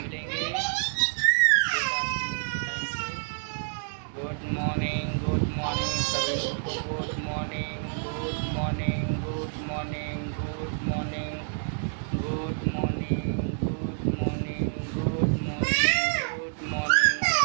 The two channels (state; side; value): silent; left; 59 dB below the other